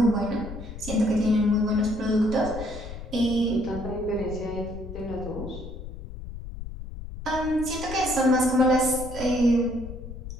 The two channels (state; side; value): noise; left; rumble, 10 dB below the sound